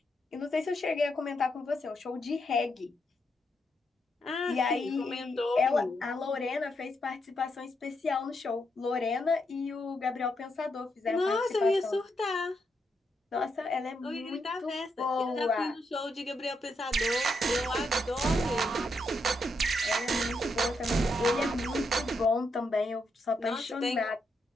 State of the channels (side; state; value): both; normal; correlation 0.80